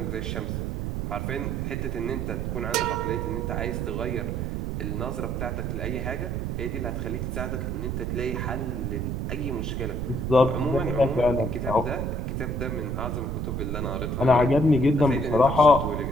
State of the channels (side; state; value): right; noise; rumble, 2 dB below the sound